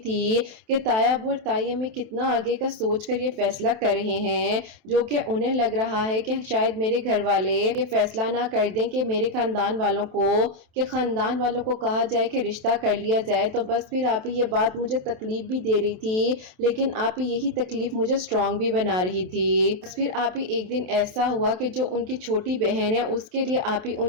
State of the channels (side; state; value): left; late; 27 ms